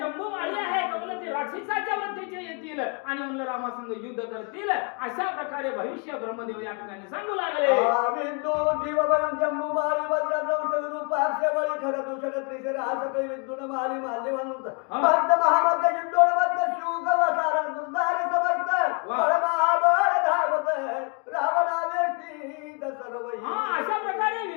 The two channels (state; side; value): quieter; right; 35.3 dB